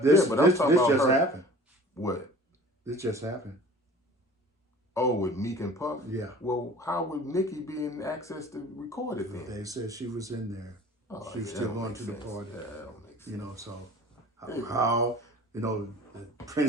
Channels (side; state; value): both; normal; correlation 0.44